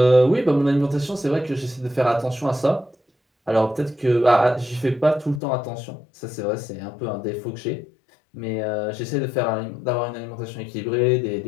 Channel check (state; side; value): drops out; right; at 5.4 s